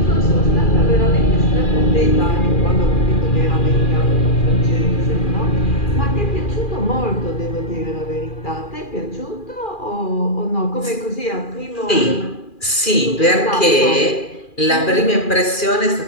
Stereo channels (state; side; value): late; right; 2.4 ms